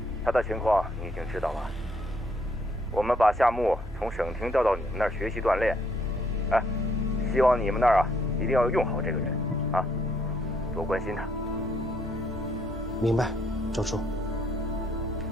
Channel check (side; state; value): both; normal; correlation 0.70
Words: 他的情况你已经知道了。我们把夏木从省厅调到你们那儿学习锻炼。哎，希望你们那儿一定要用好这个人啊。多关心他。明白，周处。